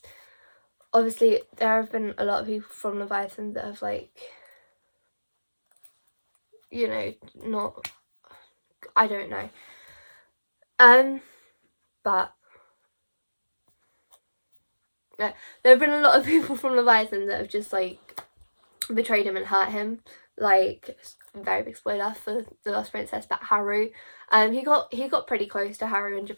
obviously there have been a lot of people from Leviathan that have, like, you know, not, I don't know, but yeah, there have been a lot of people from Leviathan that have just like betrayed him and hurt him. Like, very big spoiler for The Lost Princess, but Haru, he got pretty close to Haru in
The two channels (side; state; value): both; inverted; correlation -1.00